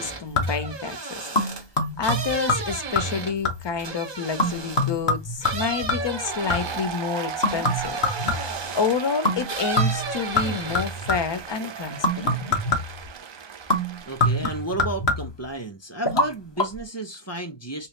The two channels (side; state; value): right; late; 1.2 ms